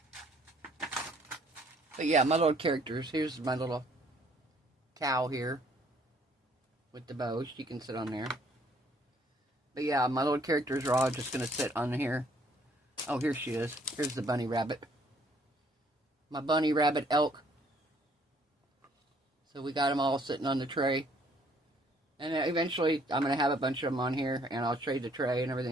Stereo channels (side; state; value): both; normal; correlation 0.62